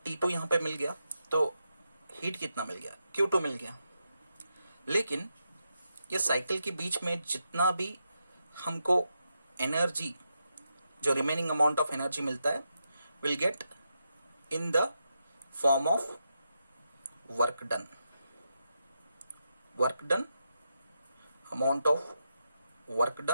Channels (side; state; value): both; inverted; correlation -0.85